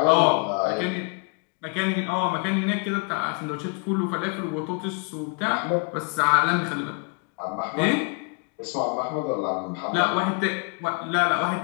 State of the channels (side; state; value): right; quieter; 34.6 dB